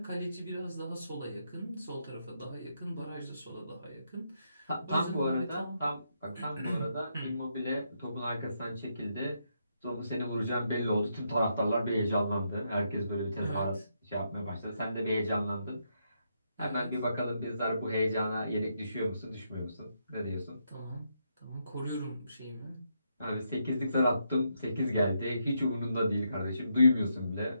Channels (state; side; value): inverted; both; correlation -0.80